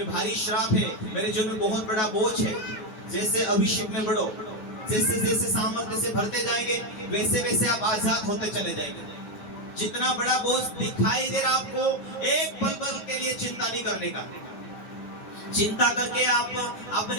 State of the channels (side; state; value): right; late; 9.4 ms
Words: भारी श्राप है, मेरे जीवन में बहुत बड़ा बोझ है। जैसे अभिषेक में बढ़ो, जैसे जैसे सामर्थ्य से भरते जाएंगे, वैसे वैसे आप आजाद होते चले जाएंगे। जितना बड़ा बोझ दिखाई दे रहा आपको, एक पल भर के लिए चिंता नहीं करने का। चिंता करके आप